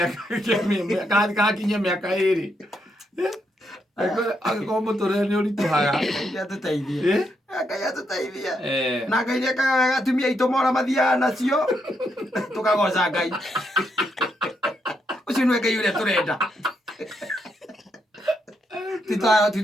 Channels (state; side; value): normal; both; correlation 0.79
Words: kakinya miaka 2 Angĩkorwo mũtũrĩre nĩ ũritũhaga. Ngai atũteithie. Ngai atũteithie. Na Ngai nĩekaga wega atumia aitũ mora mathiaga nacio. Tũkagoca Ngai. Ũcio nĩwe Ngai ũrĩa tũrenda.